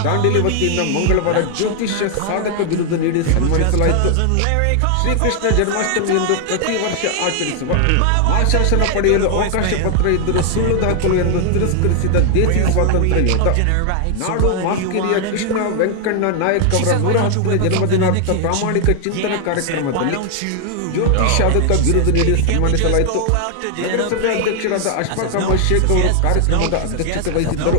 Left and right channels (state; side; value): different; both; correlation 0.00